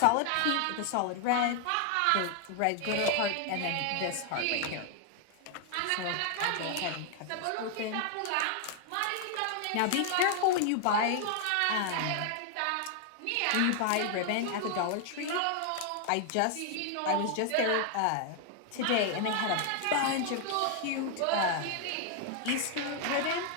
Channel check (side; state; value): both; different; correlation 0.00